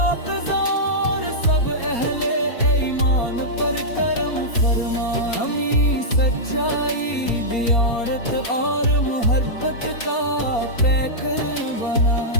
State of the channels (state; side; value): late; right; 4.3 ms